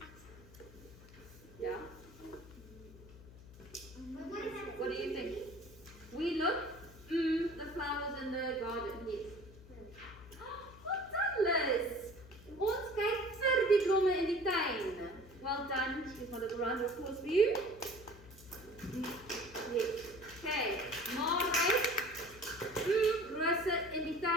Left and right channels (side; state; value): left; noise; hum, 20 dB below the sound